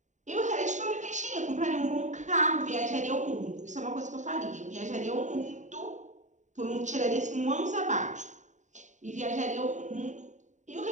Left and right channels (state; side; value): late; left; 0.35 ms